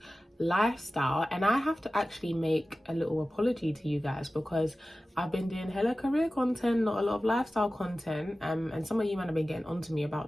lifestyle. And I have to actually make a little apology to you guys because I've been doing hella career content, not a lot of lifestyle content, and some of you might have been getting onto me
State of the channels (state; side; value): normal; both; correlation 0.95